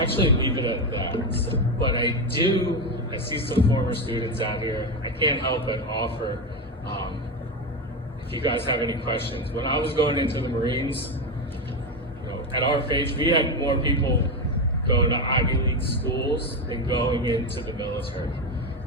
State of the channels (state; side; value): normal; both; correlation 0.14